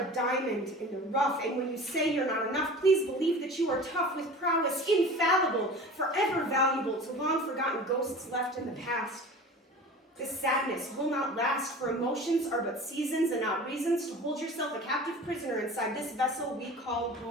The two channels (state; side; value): normal; both; correlation 0.38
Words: diamond in the rough, and when you say you're not enough, please believe that you are tough with prowess, infallible, forever valuable to long-forgotten ghosts left in the past. This sadness will not last, for emotions are but seasons and not reasons to hold yourself a captive prisoner inside this vessel we call